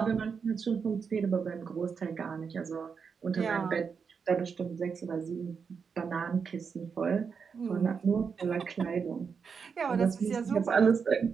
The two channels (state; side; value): quieter; left; 5.9 dB